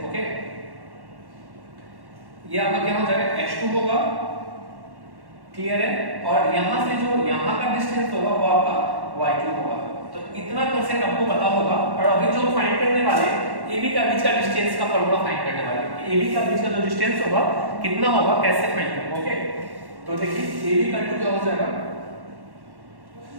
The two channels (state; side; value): late; left; 1.1 ms